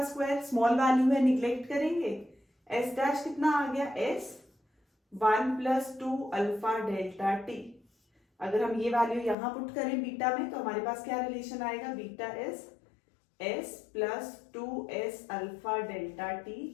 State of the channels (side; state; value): right; drops out; at 9.3 s